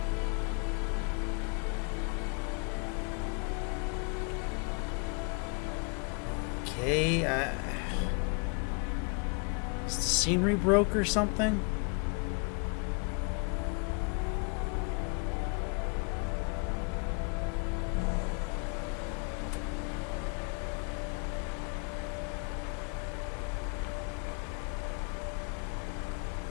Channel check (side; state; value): right; quieter; 35.3 dB